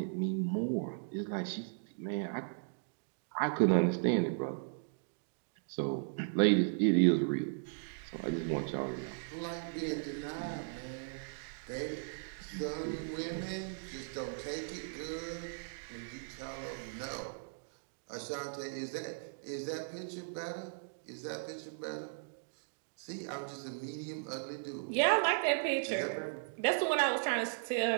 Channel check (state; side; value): silent; left; digital silence